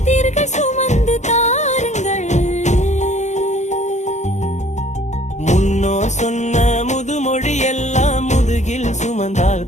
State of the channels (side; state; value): right; late; 0.34 ms